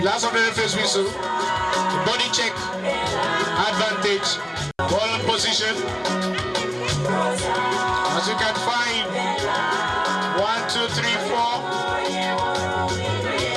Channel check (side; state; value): both; identical; correlation 1.00